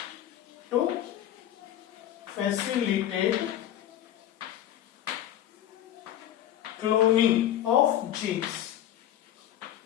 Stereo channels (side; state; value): right; quieter; 11.9 dB